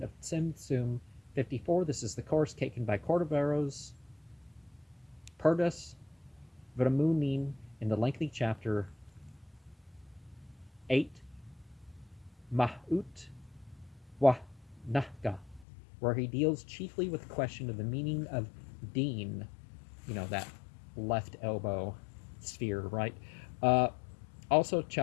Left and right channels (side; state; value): right; drops out; at 15.7 s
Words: of Tzimtzum. 54. This is the course taken by Cordoveros, Perdus, Vramunin in the lengthy chapter 8, Mahut Wa Nahga, where he deals chiefly with the question of the meaning of Deen, that left elbow sphere, right? Also,